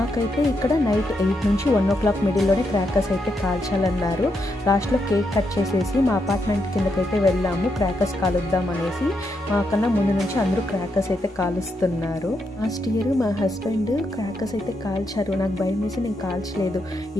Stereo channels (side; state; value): both; normal; correlation 0.81